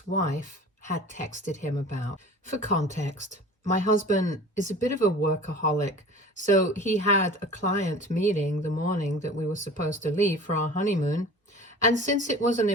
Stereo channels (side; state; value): both; normal; correlation 0.41